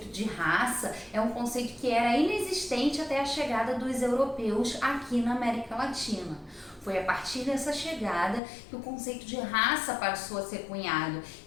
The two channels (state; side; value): drops out; right; at 8.4 s